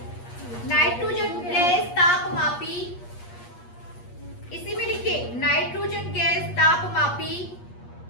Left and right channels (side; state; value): right; late; 8.4 ms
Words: लिखिए नाइट्रोजन गैस तापमापी